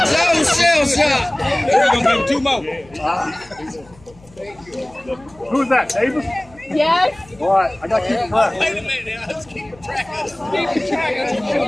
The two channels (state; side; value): noise; left; hum, 26 dB below the sound